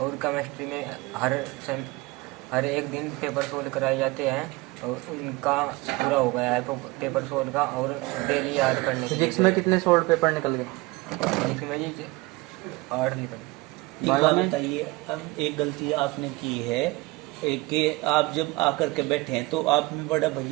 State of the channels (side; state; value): left; quieter; 22.5 dB